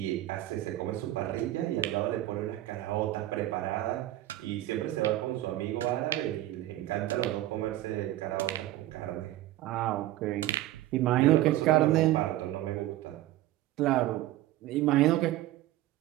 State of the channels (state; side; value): quieter; left; 15.1 dB